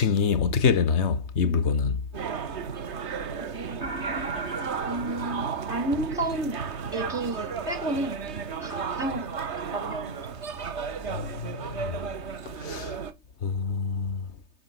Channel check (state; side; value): late; right; 3.3 ms